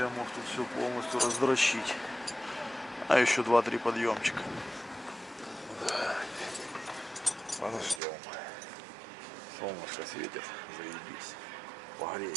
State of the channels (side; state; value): left; drops out; at 8.0 s